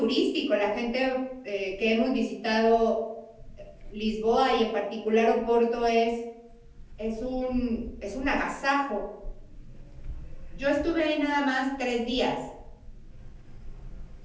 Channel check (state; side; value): identical; both; correlation 1.00